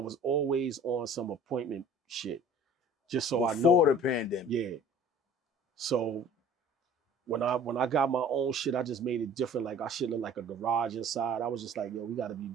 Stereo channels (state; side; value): normal; both; correlation 0.48